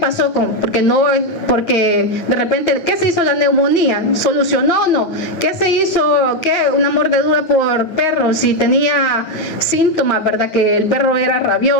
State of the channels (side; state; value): right; late; 9.4 ms